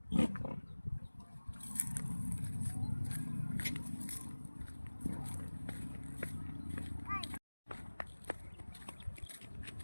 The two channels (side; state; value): both; inverted; correlation -1.00